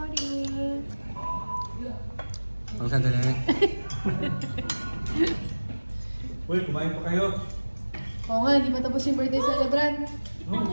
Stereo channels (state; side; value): inverted; both; correlation -1.00